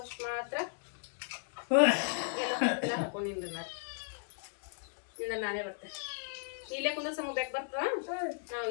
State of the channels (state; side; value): silent; right; digital silence